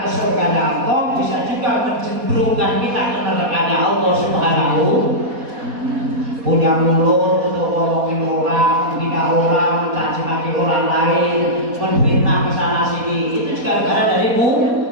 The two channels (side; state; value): left; late; 4.2 ms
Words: ke surga Allah, bisa juga menjembrungkan kita ke neraka Allah Subhanahu. Punya mulut untuk ngomongin orang, menghina orang, mencaci maki orang lain, menfitnah kesana sini, itu juga gara dari